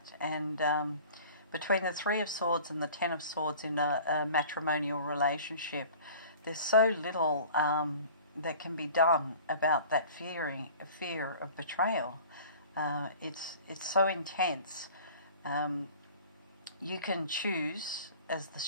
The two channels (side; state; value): both; inverted; correlation -0.44